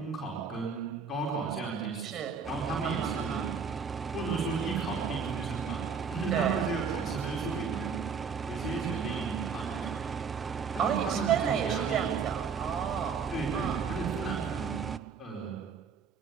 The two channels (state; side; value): quieter; left; 5.9 dB